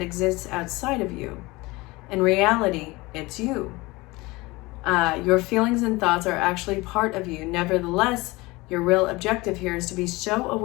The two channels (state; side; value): quieter; right; 22.2 dB